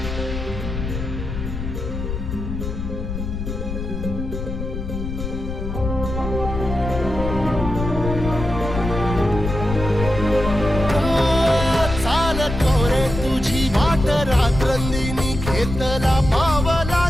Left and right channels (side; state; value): left; noise; rumble, 5 dB below the sound